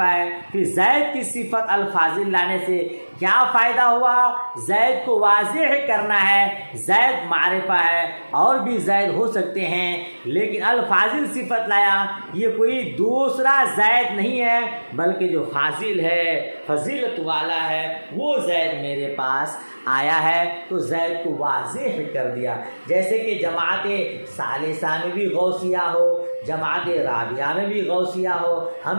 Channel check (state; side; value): inverted; both; correlation -1.00